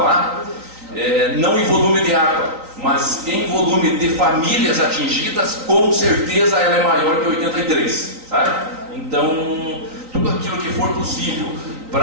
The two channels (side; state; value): left; late; 3.9 ms